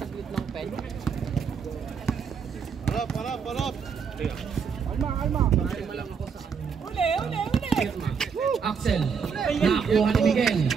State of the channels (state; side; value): quieter; left; 6.3 dB